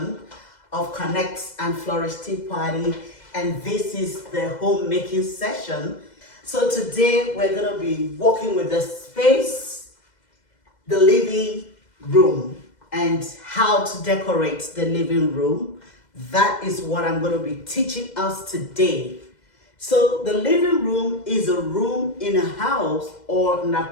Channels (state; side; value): late; right; 2.0 ms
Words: of Connect and Flourish Tea Party, and this is the homemaking session. So today we're going to be working with the space, the living room, and how to decorate the living room. That is what I'm going to be teaching us today. So the living room is a room in a house or an